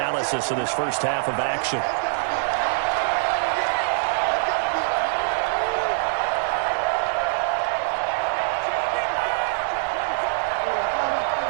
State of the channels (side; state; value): left; silent; 63 dB below the other